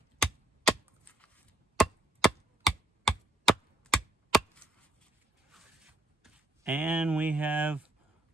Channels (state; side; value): normal; both; correlation 0.66